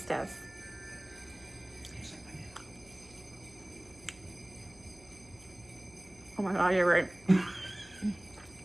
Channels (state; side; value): noise; left; hum, 23 dB below the sound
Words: test. Oh my God, you're right.